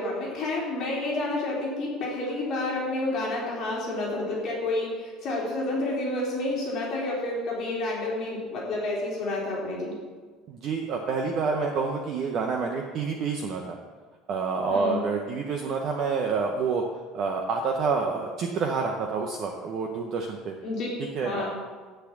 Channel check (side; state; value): both; normal; correlation 0.43